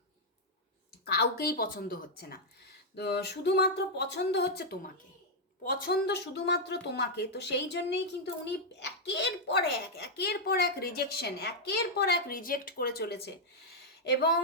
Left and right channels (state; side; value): normal; both; correlation -0.03